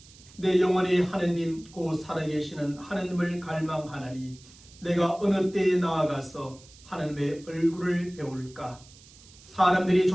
내 영혼이 하느님 곧 살아계시는 하느님을 갈망하나니 내가 어느 때에 나아가서 하느님의 얼굴을 배울까? 사람들이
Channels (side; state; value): right; noise; hiss, 23 dB below the sound